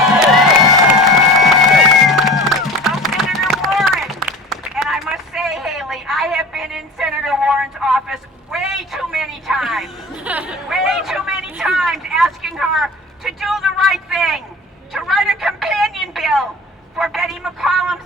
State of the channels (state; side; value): normal; both; correlation 0.39